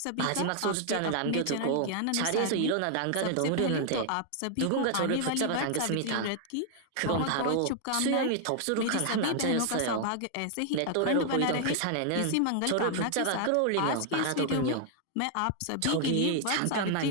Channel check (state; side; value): different; both; correlation 0.00